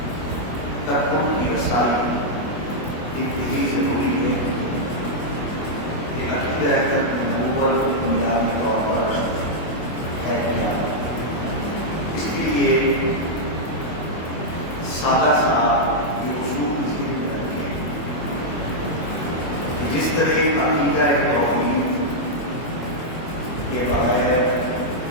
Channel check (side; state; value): right; late; 24 ms